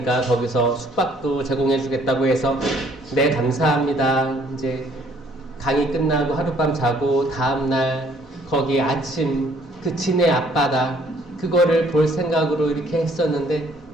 거기서 숙박도 제공해 주겠다고 해서 네 감사합니다. 이제 강의 끝나고 하룻밤 자고 다음날 거기 아침 그 진해 앞바다 그거를 볼 생각으로 이렇게 했었는데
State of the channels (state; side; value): normal; both; correlation 0.62